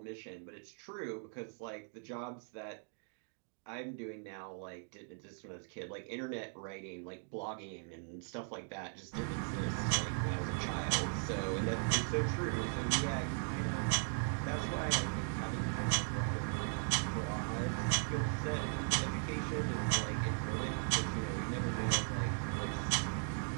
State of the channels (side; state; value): left; silent; 52 dB below the other